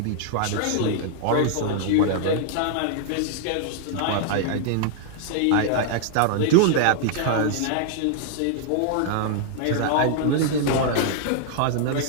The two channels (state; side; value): different; both; correlation -0.01